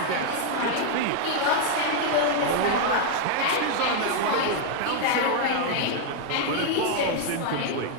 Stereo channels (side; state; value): both; different; correlation 0.00